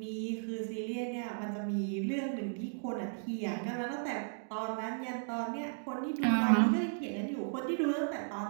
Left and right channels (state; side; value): silent; left; digital silence